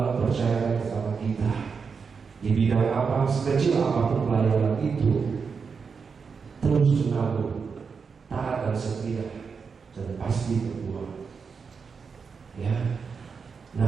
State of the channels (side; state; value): left; quieter; 5.6 dB